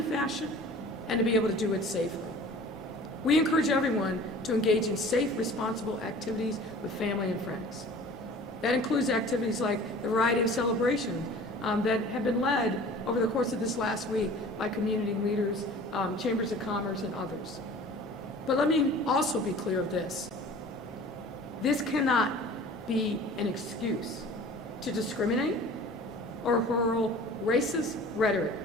fashion and to be able to do it safely. We encourage everyone to engage in safe, responsible activities with family and friends. That includes activities like the variety of celebrations that have been led over the course of this last week by community leaders, chambers of commerce, and others. But let me also be clear of this. This cannot be an excuse to discriminate or hurl racist rhetoric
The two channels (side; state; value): both; normal; correlation 0.44